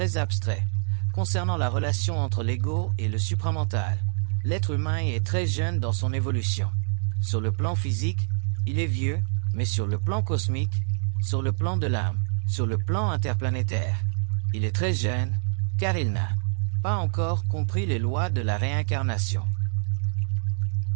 abstraits concernant la relation entre l'ego et le supramental. L'être humain est très jeune dans son évolution. Sur le plan physique, il est vieux, mais sur le plan cosmique, sur le plan de l'âme, sur le plan interplanétaire, il est très jeune, car il n'a pas encore compris les lois de la réincarnation.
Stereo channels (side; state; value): left; silent; 61 dB below the other